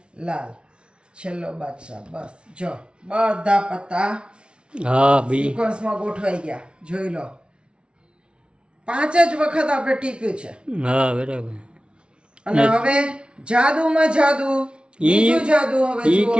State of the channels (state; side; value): late; left; 0.057 ms